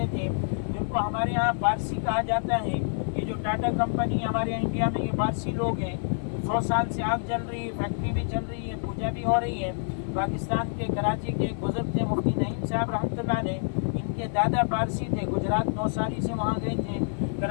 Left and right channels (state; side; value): silent; right; 55 dB below the other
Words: تھے، جن کو ہمارے یہاں پارسی کہا جاتا ہے۔ یہ جو ٹاٹا کمپنی ہمارے انڈیا میں، یہ پارسی لوگ ہیں۔ 100 سال سے آگ جل رہی ہے، فیکٹری بھی چل رہی ہے، پوجا بھی ہو رہی ہے۔ پاکستان کے کراچی کے ایک بزرگ تھے مفتی نعیم صاحب رحمۃ اللہ علیہ، ان کے دادا پارسی تھے، گجرات نوساری سے وہاں گئے تھے